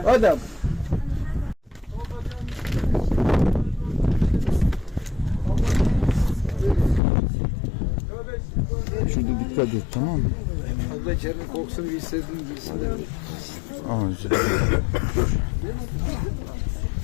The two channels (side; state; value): right; drops out; at 7.0 s